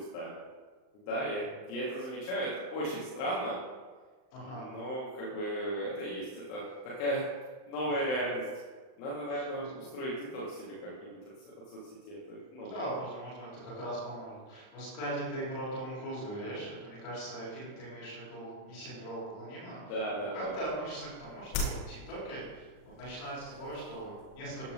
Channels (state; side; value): late; right; 39 ms